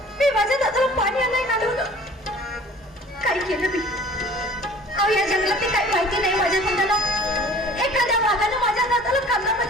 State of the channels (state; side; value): normal; both; correlation 0.48